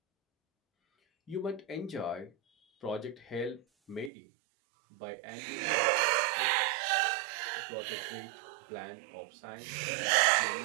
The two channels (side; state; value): left; drops out; at 4.1 s